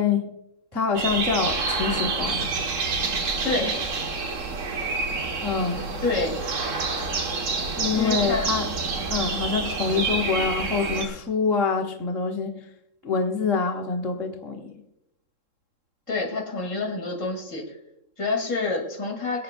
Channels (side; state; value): left; late; 3.7 ms